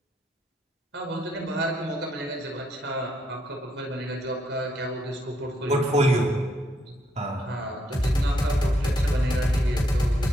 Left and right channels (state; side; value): normal; both; correlation 0.75